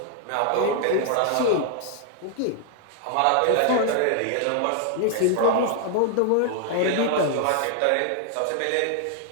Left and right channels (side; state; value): both; different; correlation 0.00